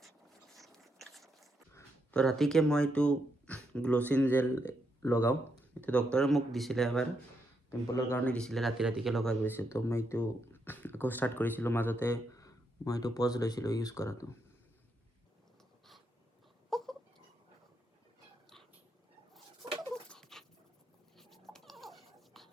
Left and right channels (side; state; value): both; normal; correlation 0.80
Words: তো ৰাতিকৈ মই এইটো গ্ল'চিন জেল লগাওঁ এইটো ডক্টৰে মোক দিছিলে এবাৰ পিম্পলৰ কাৰণে দিছিলে ৰাতিকৈ লগাই গৈছে তো মই এইটো আকৌ ষ্টাৰ্ট কৰিছিলোঁ মাজতে মই এইটো পজ লৈছিলোঁ ইউজ কৰাটো